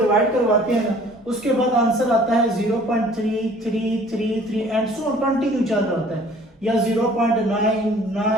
डिवाइड करवाते हैं ना, उसके बाद आंसर आता है 0.3333 एंड सो कंटिन्यू चल रहा होता है, या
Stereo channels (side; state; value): both; normal; correlation 0.53